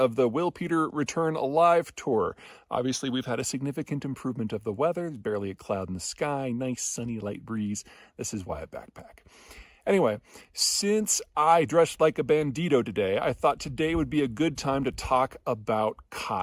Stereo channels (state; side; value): identical; both; correlation 1.00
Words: the Will Peter Return Alive tour. Obviously, we've had a significant improvement of the weather. There's barely a cloud in the sky, nice sunny light breeze. This is why I backpack. Anyway, since I dressed like a bandito today, I thought today would be a good time to talk about